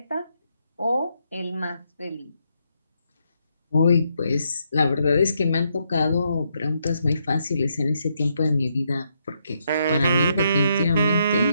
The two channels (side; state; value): both; inverted; correlation -0.78